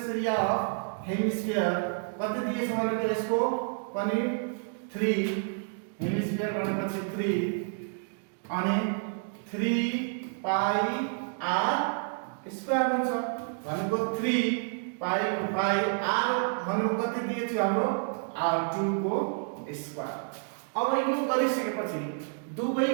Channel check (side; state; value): left; silent; 58 dB below the other